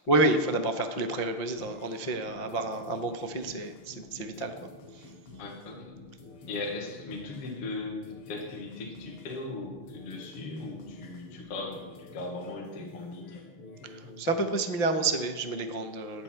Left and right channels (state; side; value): late; right; 5.9 ms